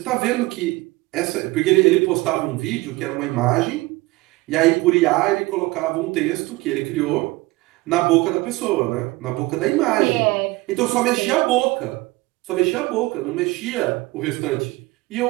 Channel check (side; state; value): left; quieter; 21.3 dB